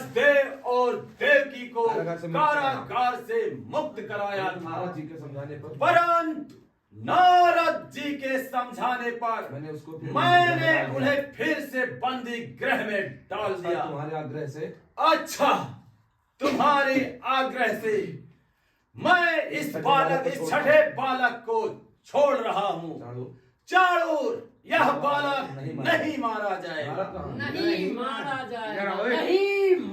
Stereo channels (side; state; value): both; identical; correlation 1.00